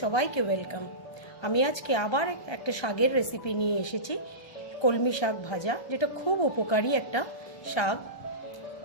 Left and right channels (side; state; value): right; late; 1.3 ms